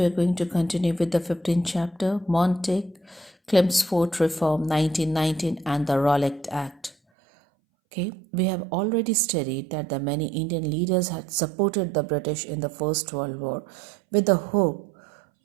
are going to continue with the 15th chapter, Montague, Chelmsford Reform 1919 and the Rollick Act. Okay, we have already studied that the many Indian leaders had supported the British in the First World War with the hope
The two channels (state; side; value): drops out; left; at 7.0 s